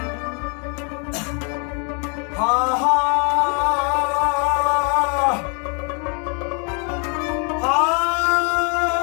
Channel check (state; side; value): quieter; right; 36.9 dB